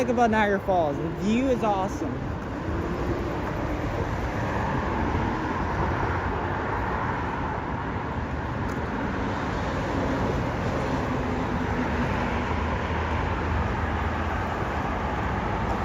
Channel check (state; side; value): identical; both; correlation 1.00